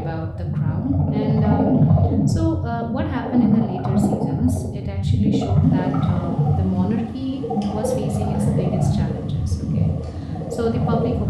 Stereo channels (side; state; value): both; identical; correlation 1.00